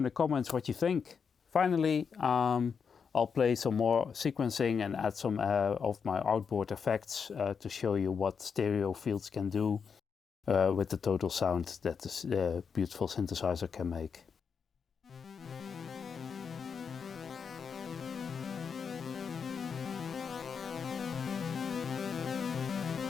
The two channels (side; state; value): right; quieter; 6.2 dB